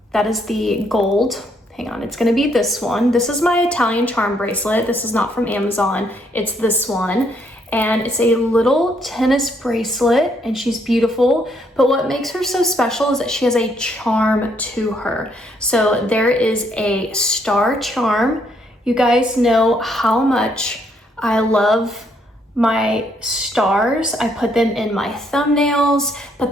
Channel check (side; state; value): both; normal; correlation 0.71